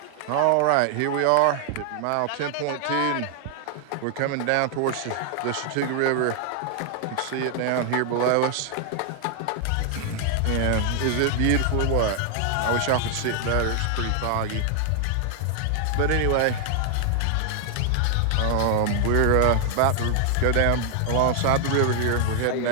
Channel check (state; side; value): different; both; correlation 0.00